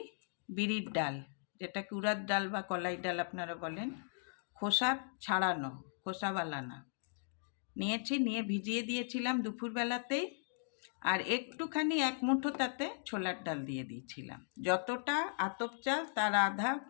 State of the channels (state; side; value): silent; right; digital silence